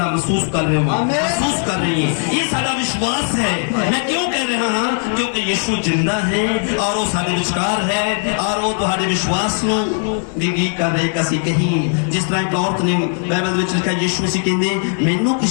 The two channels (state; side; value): silent; right; 58 dB below the other